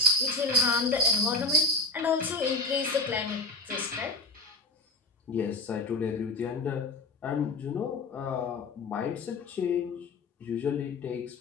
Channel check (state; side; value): quieter; right; 3.1 dB